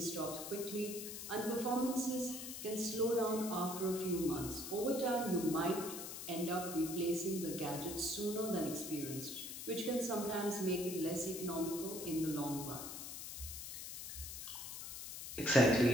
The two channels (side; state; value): left; noise; hiss, 8 dB below the sound